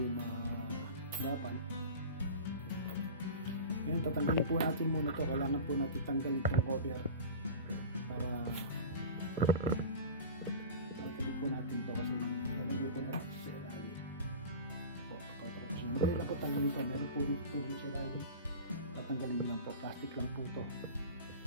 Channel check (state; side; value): inverted; both; correlation -0.33